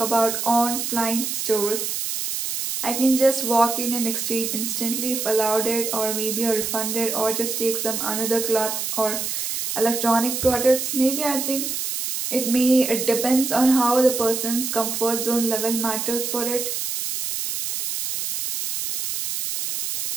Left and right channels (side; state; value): right; noise; hiss, 3 dB below the sound